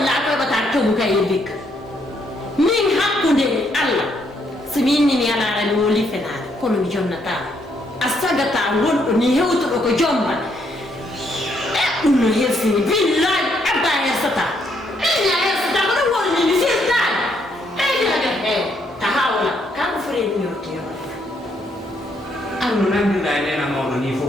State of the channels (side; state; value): both; normal; correlation 0.73